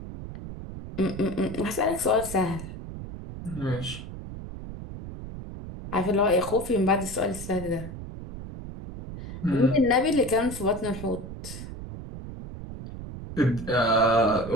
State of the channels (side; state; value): right; noise; rumble, 10 dB below the sound